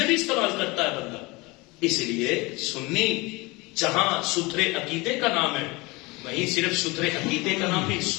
بھی استعمال کرتا ہے بندہ. اس لیے سنی جہاں ستھرے عقیدے کا نام ہے، وہیں صرف ستھرے عقیدے کا نام نہیں،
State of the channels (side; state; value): right; quieter; 24.1 dB